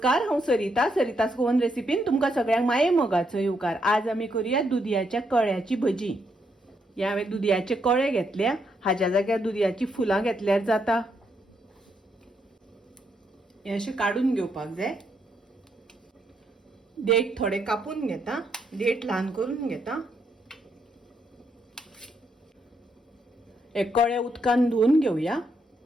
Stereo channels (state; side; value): normal; both; correlation 0.77